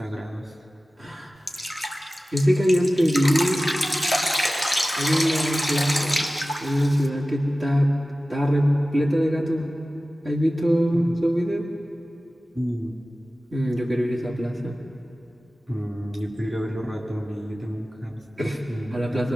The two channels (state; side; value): normal; both; correlation 0.96